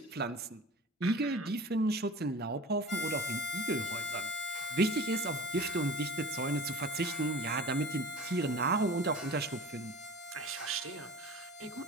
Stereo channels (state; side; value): normal; both; correlation 0.39